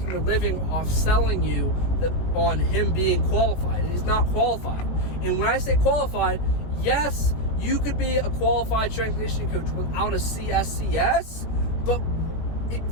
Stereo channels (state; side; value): late; right; 18 ms